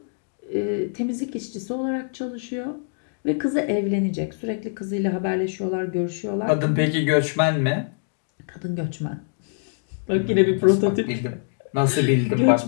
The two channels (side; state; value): right; silent; digital silence